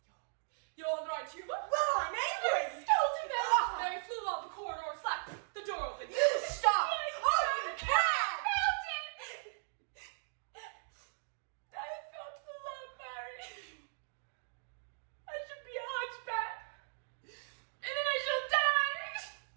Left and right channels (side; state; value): left; silent; digital silence